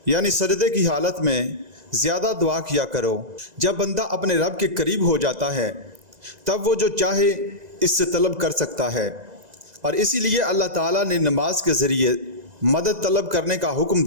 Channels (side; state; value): left; late; 2.0 ms